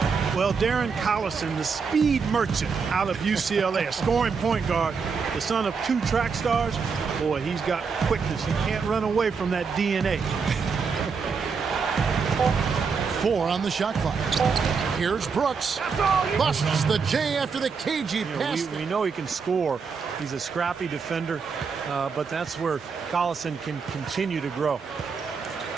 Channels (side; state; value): left; quieter; 5.5 dB